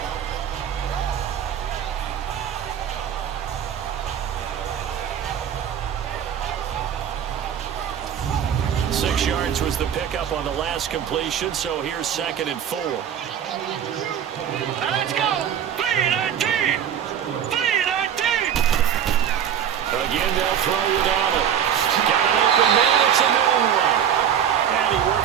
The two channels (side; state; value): left; quieter; 9.0 dB